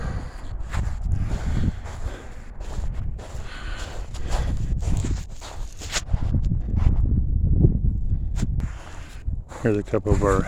Here's a couple of our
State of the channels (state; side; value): identical; both; correlation 1.00